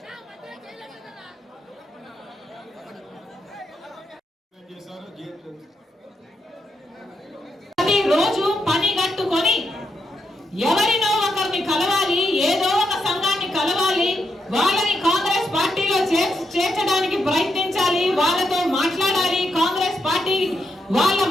రోజు పని కట్టుకొని ఎవరినో ఒకరిని కలవాలి, ఏదో ఒక సంఘాన్ని కలవాలి, వాళ్ళని కాంగ్రెస్ పార్టీలో చేర్చడానికి ప్రయత్నించాలి, వాళ్ళతో మాట్లాడాలి, కాంగ్రెస్ పార్టీ వాళ్ళ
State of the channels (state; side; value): normal; both; correlation 0.81